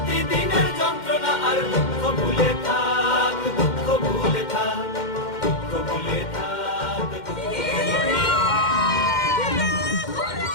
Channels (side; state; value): right; late; 2.1 ms